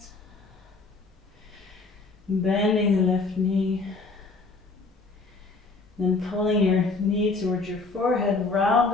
Bending the left knee. Then pulling your knee towards your forehead,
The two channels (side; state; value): right; quieter; 3.8 dB